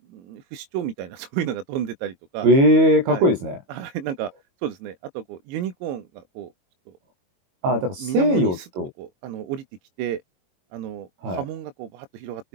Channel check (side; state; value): left; late; 22 ms